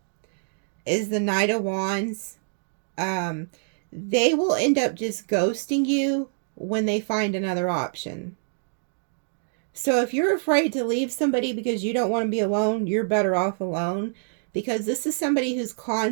is the Knight of Wands. They will end up just ghosting you when they find another option. So if you're afraid to leave somebody because you don't want to be alone, you're better off alone. Because this is somebody who's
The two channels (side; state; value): left; silent; digital silence